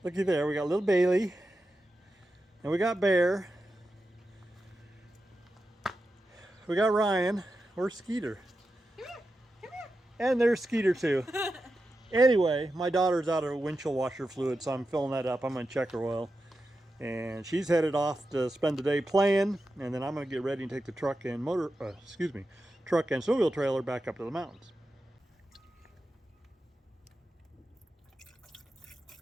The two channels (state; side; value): normal; both; correlation 0.90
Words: Looky there, we got little Bailey, and we got Bear. We got Ryan. Where's Skeeter? Come here, come here. And there's Skeeter too. Anyway, my daughter's out of windshield washer fluid, so I'm filling that up. I'm gonna check her oil. And she's headed off to spend the day playing, and then I'm gonna get ready and take the truck and truck and snowmobile trailer back up to the mountains.